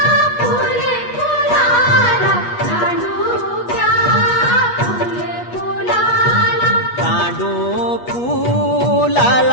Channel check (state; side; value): late; right; 8.3 ms